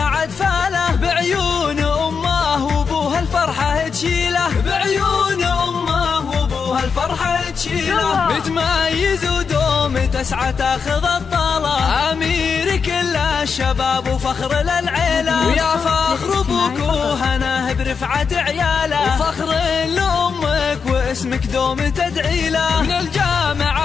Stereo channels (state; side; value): quieter; right; 5.8 dB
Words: فاله، بعيون امه وابوها الفرحة تشيله، بعيون امه وابوها الفرحة تشيله. متميز ودوم تسعى تاخذ الطالة، امير كل الشباب وفخر للعيلة. ويا فخر ابوك وهناه برفعة عياله، وفخر لامك واسمك دوم تدعي له. من